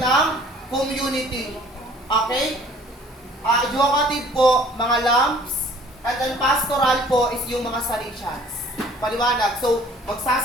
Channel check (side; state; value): both; normal; correlation 0.53